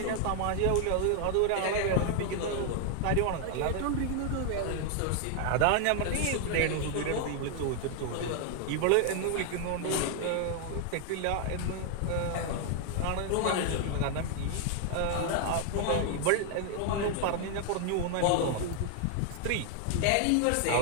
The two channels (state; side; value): different; both; correlation 0.00